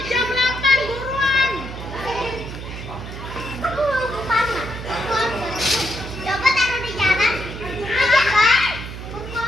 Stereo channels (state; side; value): noise; right; hum, 10 dB below the sound